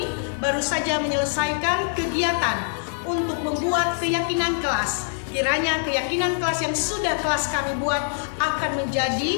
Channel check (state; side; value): silent; right; digital silence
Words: baru saja menyelesaikan kegiatan untuk membuat keyakinan kelas. Kiranya keyakinan kelas yang sudah kelas kami buat akan